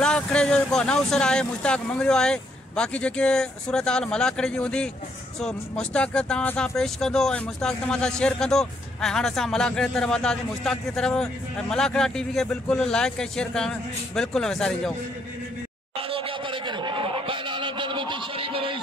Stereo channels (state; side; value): normal; both; correlation 0.73